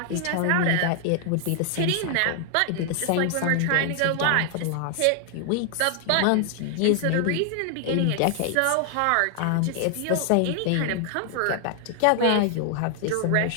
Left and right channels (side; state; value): both; different; correlation 0.00